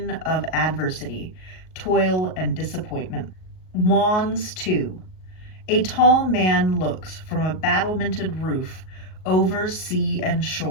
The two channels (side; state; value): right; late; 38 ms